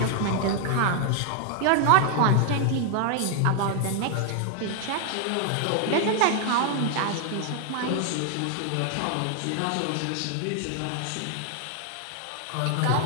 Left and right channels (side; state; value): both; different; correlation 0.00